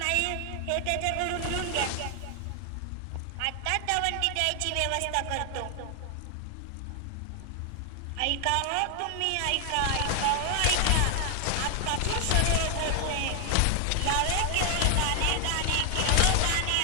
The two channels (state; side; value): different; both; correlation 0.00